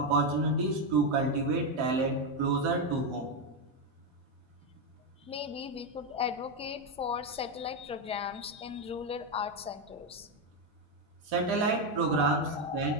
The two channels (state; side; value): normal; both; correlation 0.07